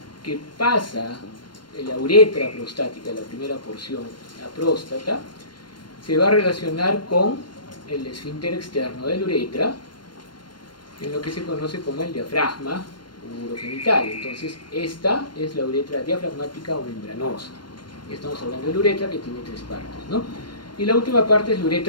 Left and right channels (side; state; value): right; late; 0.72 ms